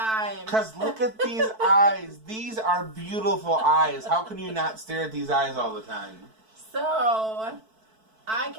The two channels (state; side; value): late; left; 4.6 ms